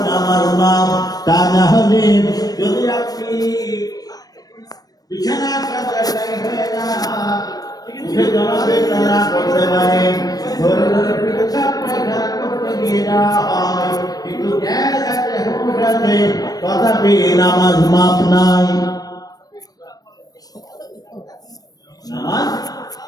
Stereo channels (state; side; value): late; right; 0.19 ms